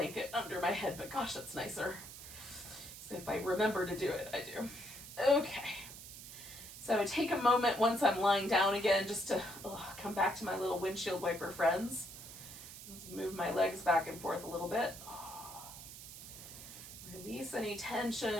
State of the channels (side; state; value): right; noise; hiss, 13 dB below the sound